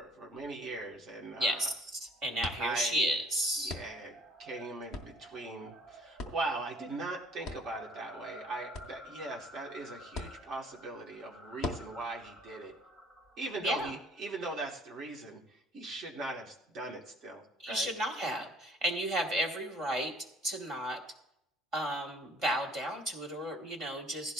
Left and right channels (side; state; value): both; normal; correlation 0.55